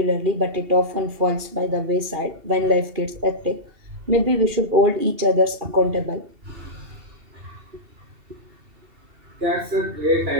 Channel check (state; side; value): late; left; 2.7 ms